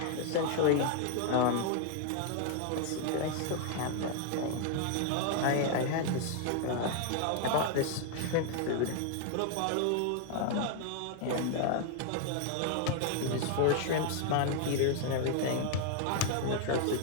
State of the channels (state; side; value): different; both; correlation 0.00